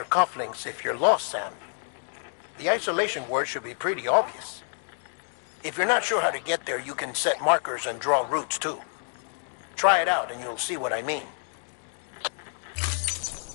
cufflinks if you're lost, Sam. The isolation word should be pretty obvious. If you're not sure how to get there, you can set markers and draw routes too. Try it out and you'll see what I mean.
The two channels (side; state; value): right; silent; digital silence